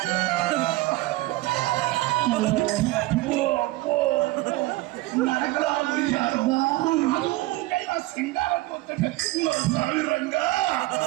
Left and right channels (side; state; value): left; quieter; 18.8 dB